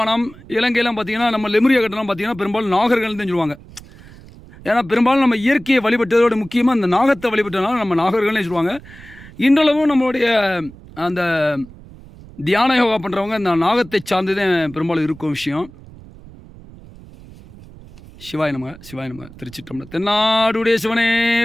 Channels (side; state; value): right; noise; rumble, 20 dB below the sound